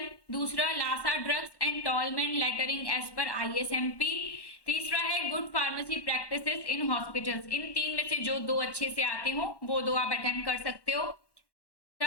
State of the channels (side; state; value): right; late; 1.1 ms